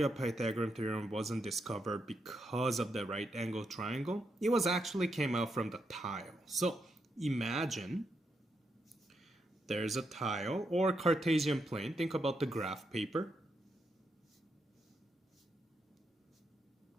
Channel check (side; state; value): both; normal; correlation 0.82